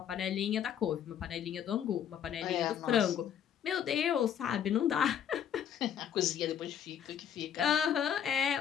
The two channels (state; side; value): quieter; right; 9.1 dB